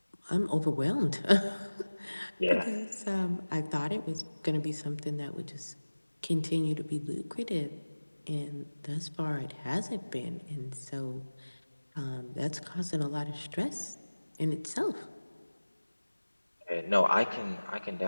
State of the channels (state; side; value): inverted; both; correlation -1.00